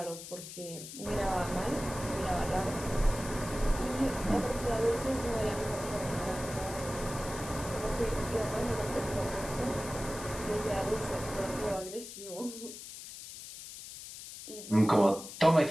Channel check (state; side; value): noise; left; hiss, 12 dB below the sound